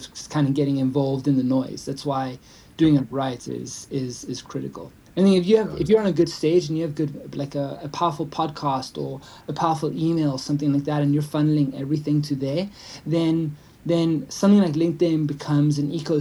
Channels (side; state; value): both; identical; correlation 1.00